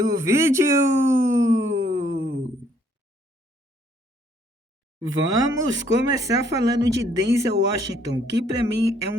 vídeo! Vamos começar falando de Denzel Washington, que para mim é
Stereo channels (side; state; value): both; normal; correlation 0.66